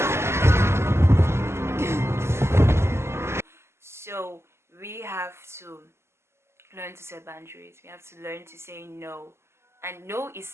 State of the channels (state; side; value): late; left; 0.13 ms